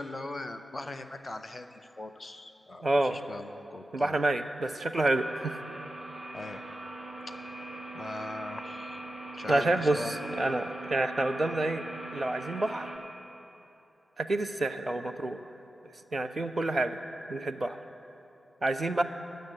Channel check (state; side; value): normal; both; correlation 0.91